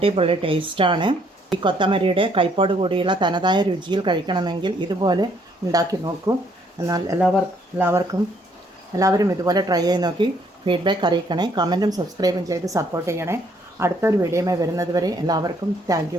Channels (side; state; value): both; normal; correlation 0.67